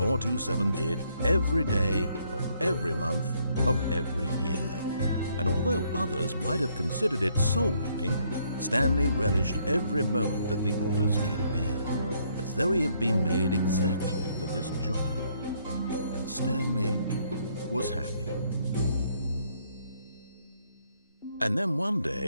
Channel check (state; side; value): inverted; both; correlation -0.69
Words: did every day of every month of every year. And although others might have considered it soul-rending, Stanley relished every moment that the orders came in, as though he had been made exactly for this job. And Stanley was happy. And then one